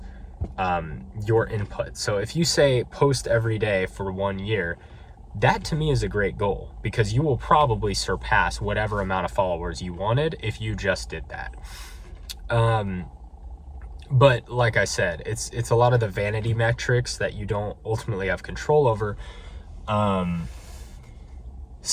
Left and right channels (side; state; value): both; identical; correlation 1.00